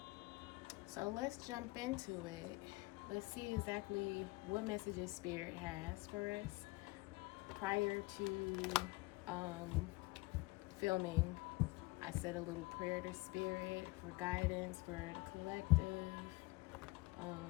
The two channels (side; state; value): right; quieter; 23.6 dB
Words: So let's jump into it. Let's see exactly what messages spirit has for us. Prior to filming, I said a little prayer to spirit for guidance for the collective,